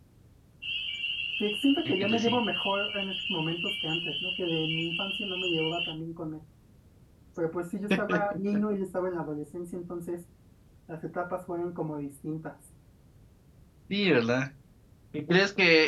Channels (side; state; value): both; identical; correlation 1.00